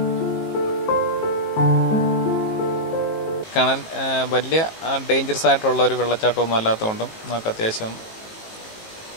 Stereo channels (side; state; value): right; late; 19 ms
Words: കാണാൻ വലിയ ഡേഞ്ചറസ് ആയിട്ടുള്ള ഒരു വെള്ളച്ചാട്ടമൊന്നും അല്ലാത്തതുകൊണ്ടും നമുക്ക് അത്യാവശ്യം